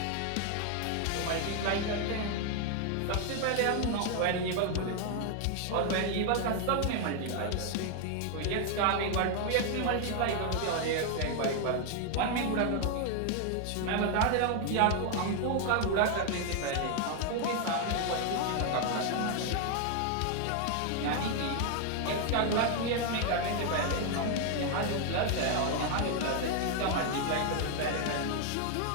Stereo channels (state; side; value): different; both; correlation 0.01